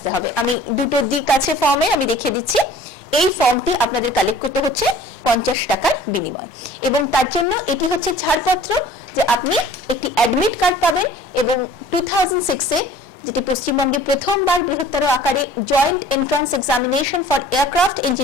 হবে। আমি দুটো দিক আছে ফর্মে, আমি দেখিয়ে দিচ্ছি। এই ফর্মটি আপনাদের কালেক্ট করতে হচ্ছে 50 টাকার বিনিময়, এবং তার জন্য এটি হচ্ছে ছাড়পত্র যে আপনি একটি অ্যাডমিট কার্ড পাবেন, এবং 2006-এ যেটি পশ্চিমবঙ্গে প্রথমবার বৃহত্তর আকারে joint entrance examination for aircraft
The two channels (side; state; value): both; normal; correlation 0.49